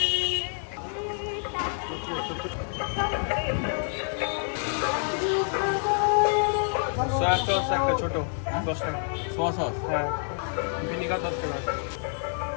সয়া সস একটা ছোট 10 টাকা। Soya sauce? হ্যাঁ, ভিনিগার 10 টাকা।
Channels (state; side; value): silent; right; 60 dB below the other